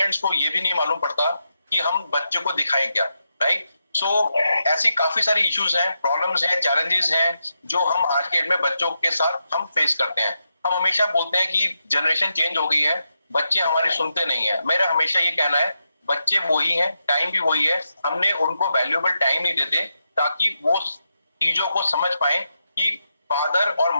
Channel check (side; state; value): both; inverted; correlation -0.85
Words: को ये भी नहीं मालूम पड़ता कि हम बच्चों को दिखाएं क्या, राइट। सो ऐसी काफी सारी इश्यूज हैं, प्रॉब्लम्स हैं, चैलेंजेस हैं जो हम आज के डेट में बच्चों के साथ हम फेस करते हैं। हम हमेशा बोलते हैं कि जनरेशन चेंज हो गई है, बच्चे हमारी सुनते नहीं है। मेरा हमेशा ये कहना है बच्चे वही हैं, टाइम भी वही है, हमने उनको वैल्यूएबल टाइम नहीं देते ताकि वो चीजों को समझ पाए कि फादर और